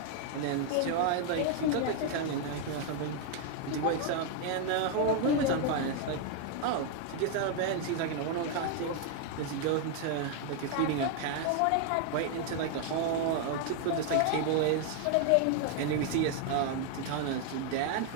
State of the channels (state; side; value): different; both; correlation 0.00